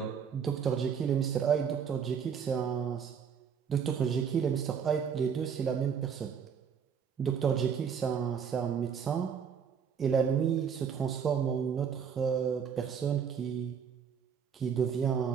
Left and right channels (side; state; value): left; quieter; 7.2 dB